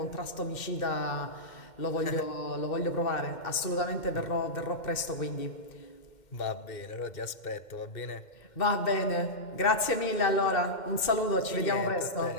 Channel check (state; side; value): late; right; 2.1 ms